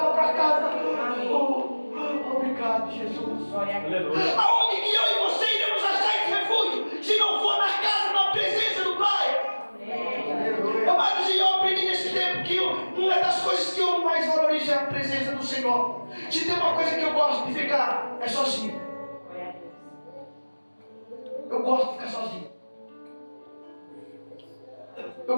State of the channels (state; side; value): inverted; both; correlation -1.00